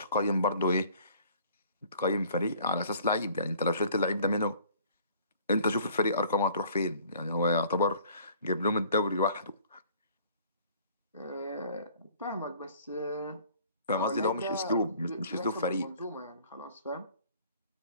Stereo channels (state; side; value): inverted; both; correlation -0.53